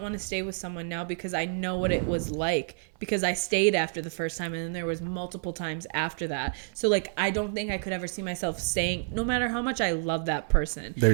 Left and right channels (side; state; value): left; silent; 57 dB below the other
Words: want to stay with someone now because I know what it was like. Because I stayed after the first time, and then there was multiple times after that. So, like, I don't think I could ever see myself staying, no matter how much I love that person.